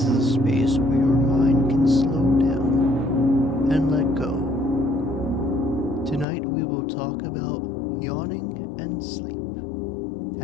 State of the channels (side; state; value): right; drops out; at 6.2 s